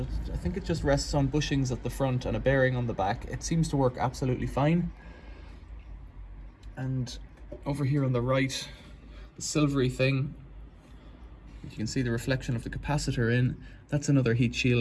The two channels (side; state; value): both; identical; correlation 1.00